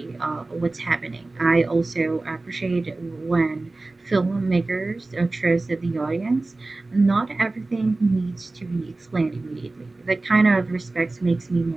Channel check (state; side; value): quieter; left; 3.2 dB